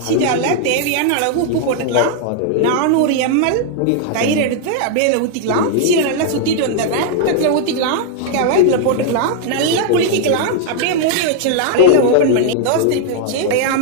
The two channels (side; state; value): both; different; correlation 0.00